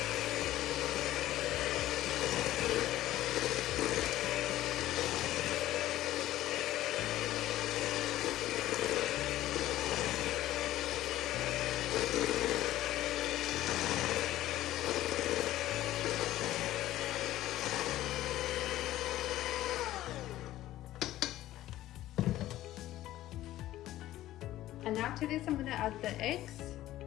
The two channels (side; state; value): right; quieter; 14.6 dB